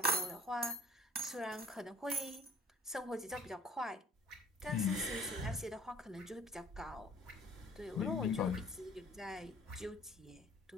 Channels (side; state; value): both; normal; correlation 0.52